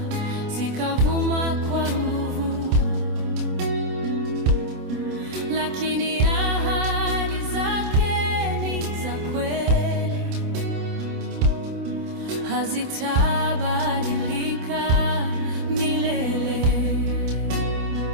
zikavuma kwa nguvu, lakini ahadi zake ni za kweli, hazitabadilika milele.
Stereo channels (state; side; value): late; left; 27 ms